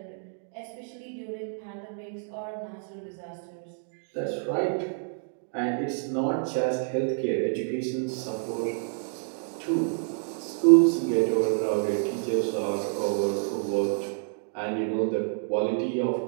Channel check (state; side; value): silent; left; digital silence